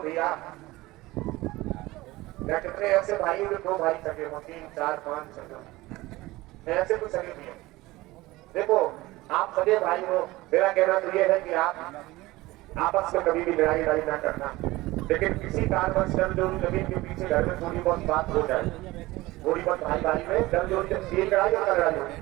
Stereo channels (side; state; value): left; quieter; 19.4 dB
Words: भैया, मैं कितने ऐसे भाई जो 2 भाई सके हो, 3, 4, 5 सके, ऐसे कुछ सके भी है। देखो आप सगे भाई हो, मेरा कहना तो ये है कि आप आपस में कभी भी लड़ाई ना करना, लेकिन किसी कारणवश जमजोरी जमीन के पीछे घर में थोड़ी बहुत बात हो जाए, थोड़ी बहुत भाई में जमजोरी लड़ाई और लड़ाई होती,